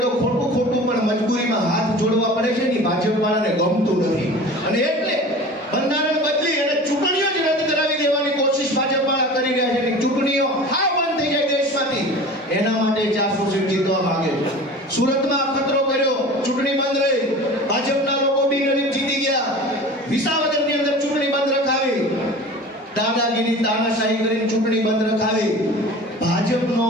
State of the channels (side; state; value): both; normal; correlation 0.38